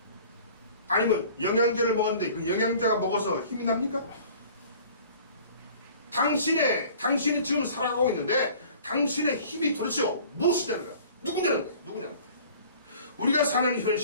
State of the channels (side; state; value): both; inverted; correlation -0.48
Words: 아니면 영양제를 먹었는데 그 영양제가 먹어서 힘이 납니까? 당신이 지금 살아가고 있는데 당신의 힘이 도대체 무엇이냐는 거야? 누구냐는 거야? 우리가 사는